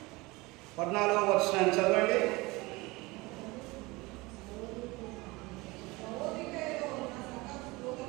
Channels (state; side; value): quieter; left; 22.9 dB